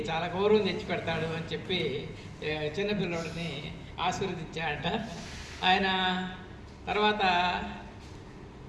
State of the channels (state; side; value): identical; both; correlation 1.00